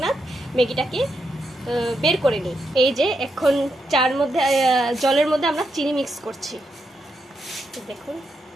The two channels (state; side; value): normal; both; correlation 0.83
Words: ম্যাগিটাকে বের করে নিই। এই যে এখন জলের মধ্যে আমরা চিনি মিক্স করছি। দেখুন,